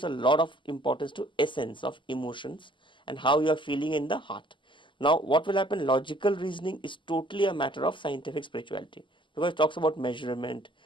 a lot of importance to essence of emotions and how you are feeling in the heart. Now what will happen? Logical reasoning is totally a matter of scientific spirituality, because it talks about measurement.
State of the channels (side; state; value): right; late; 0.24 ms